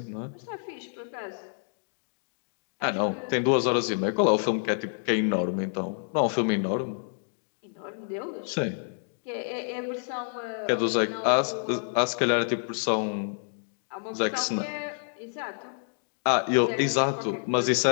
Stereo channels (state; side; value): silent; right; digital silence